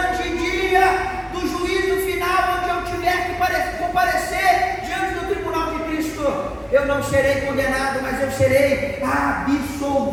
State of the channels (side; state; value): both; identical; correlation 1.00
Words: dia do juízo final, onde eu tiver que comparecer diante do tribunal de Cristo, eu não serei condenado, mas eu serei